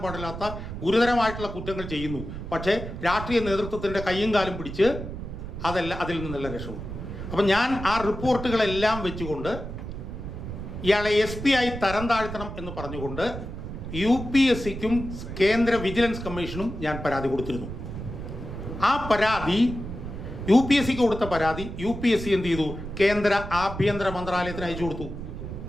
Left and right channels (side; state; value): right; noise; rumble, 8 dB below the sound